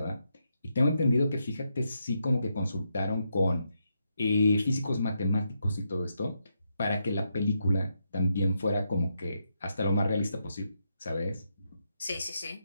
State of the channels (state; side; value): inverted; both; correlation -0.81